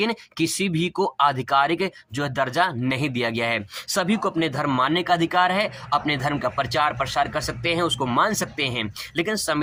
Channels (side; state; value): both; identical; correlation 1.00